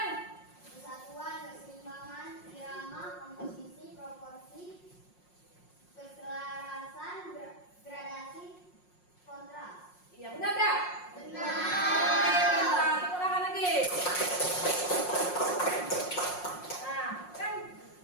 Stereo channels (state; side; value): late; right; 5.6 ms